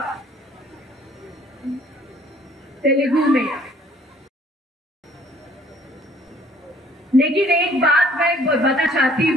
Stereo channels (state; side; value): normal; both; correlation 0.58